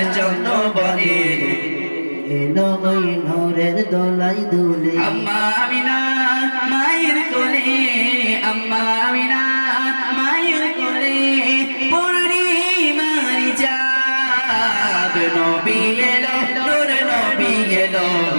চন্দ্র বলে এলো ওই নূরের দোলাই দুলে আম্মা আমিনা মায়ের কোলে আম্মা আমিনা মায়ের কোলে পূর্ণিমার চাঁদ নবী এলো নূর নবী এলো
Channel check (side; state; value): both; inverted; correlation -1.00